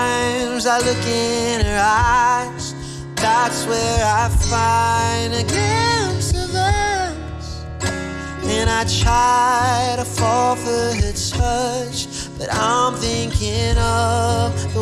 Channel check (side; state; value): both; identical; correlation 1.00